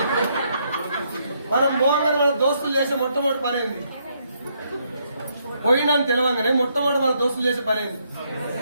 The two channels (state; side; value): inverted; both; correlation -0.74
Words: మనం మోహంగా మన దోస్తులు చేసే మొట్టమొదటి పని ఏంది? పోయినా తెలవంగానే మొట్టమొదటి మన దోస్తులు చేసే పని ఏంది?